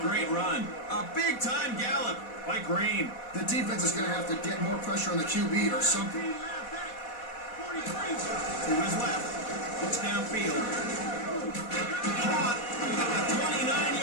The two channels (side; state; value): right; late; 4.2 ms